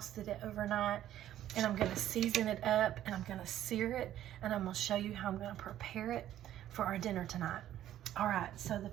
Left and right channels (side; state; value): left; quieter; 12.3 dB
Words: it overnight, and I'm gonna season it up, and I'm gonna sear it, and I'm gonna show you how I'm gonna prepare it for our dinner tonight. All right, so the